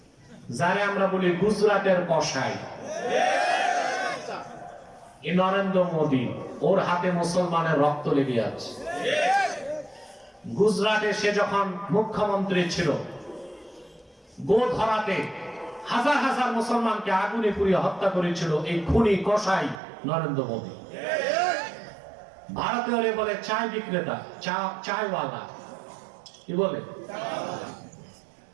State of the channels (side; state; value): left; drops out; at 19.8 s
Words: যারে আমরা বলি গুজরাটের কসাই, এই নরেন্দ্র মোদী, ওর হাতে মুসলমানের রক্ত লেগে আছে। গুজরাটে সে যখন মুখ্যমন্ত্রী ছিল, গোধরাতে হাজার হাজার মুসলমানকে আগুনে পুড়িয়ে হত্যা করেছিল এই খুনি কসাই নরেন্দ্র মোদী। ভারতীয়রে বলে চায় বিক্রেতা, চায়ওয়ালা, কি বলে?